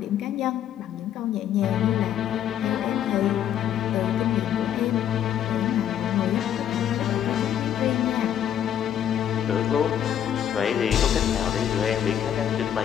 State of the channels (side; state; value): right; quieter; 10.0 dB